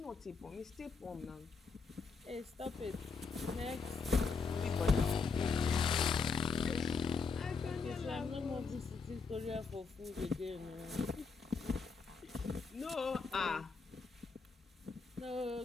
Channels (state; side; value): quieter; right; 4.8 dB